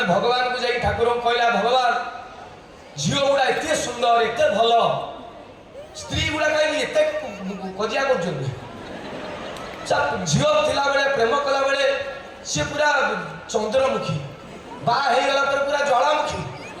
भगवान को जाई ठाकुर कहला भगवान झील गुड़ा एत सुंदर एत भल स्त्री गुड़ा कहीं एत कजिया कर झील थिला बेले प्रेम कला बेले सी पूरा चंद्रमुखी बागला पूरा ज्वालामुखी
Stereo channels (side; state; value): both; identical; correlation 1.00